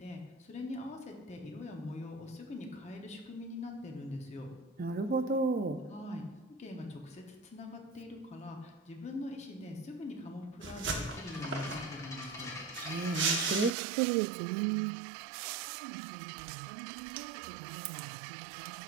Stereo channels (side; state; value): left; drops out; at 13.7 s